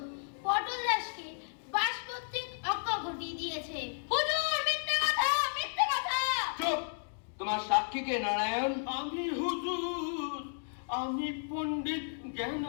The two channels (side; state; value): right; silent; digital silence